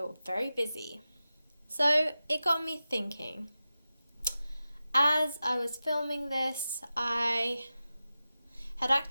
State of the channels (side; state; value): both; inverted; correlation -0.93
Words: very busy. So it got me thinking. As I was filming this, I had